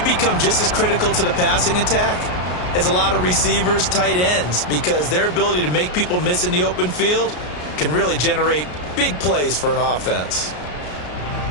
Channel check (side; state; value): right; late; 33 ms